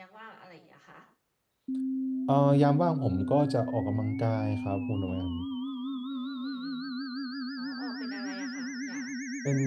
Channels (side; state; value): both; identical; correlation 1.00